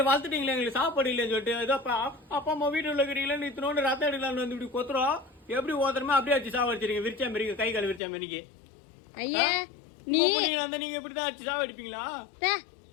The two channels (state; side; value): drops out; right; at 8.0 s